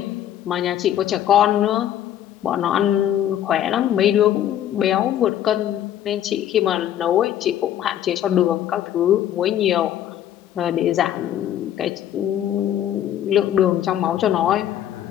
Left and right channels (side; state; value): right; quieter; 11.2 dB